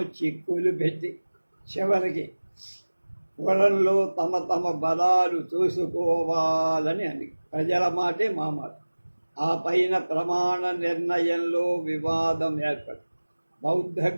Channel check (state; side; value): inverted; both; correlation -1.00